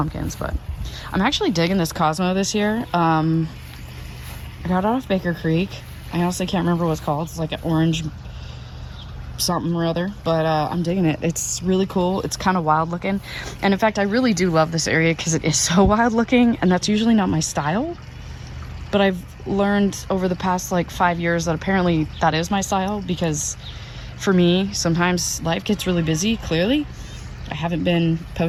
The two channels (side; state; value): both; identical; correlation 1.00